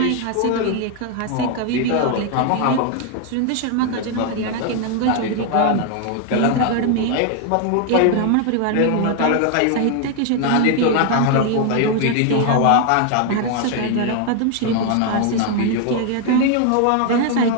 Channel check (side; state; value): both; different; correlation 0.00